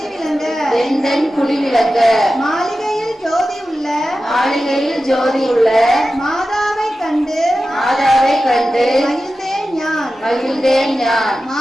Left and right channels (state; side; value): normal; both; correlation 0.93